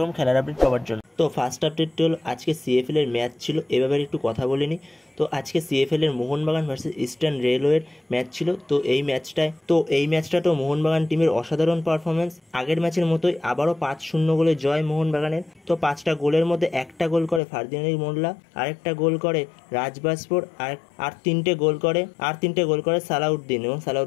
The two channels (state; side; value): drops out; right; at 17.4 s